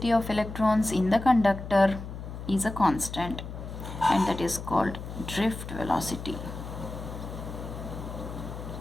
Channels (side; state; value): left; noise; hum, 9 dB below the sound